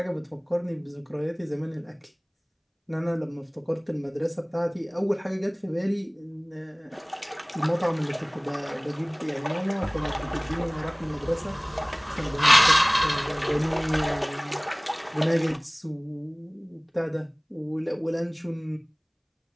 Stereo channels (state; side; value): identical; both; correlation 1.00